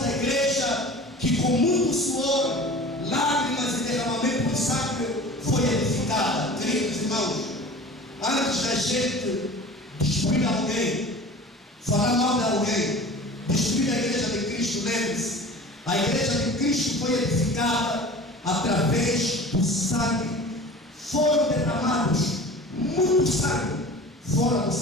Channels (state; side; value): normal; both; correlation 0.39